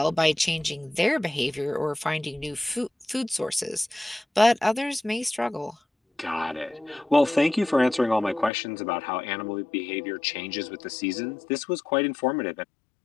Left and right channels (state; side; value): drops out; right; at 8.5 s